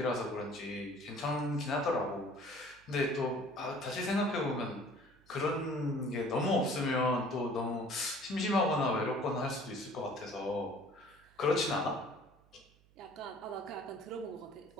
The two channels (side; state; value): right; noise; hum, 29 dB below the sound